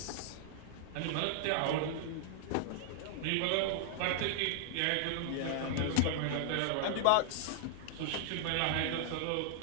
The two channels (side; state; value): both; different; correlation -0.01